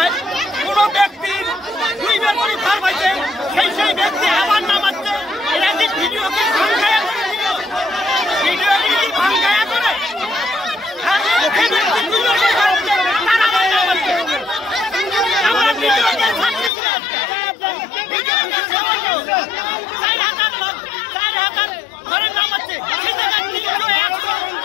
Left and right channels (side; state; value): right; drops out; at 16.7 s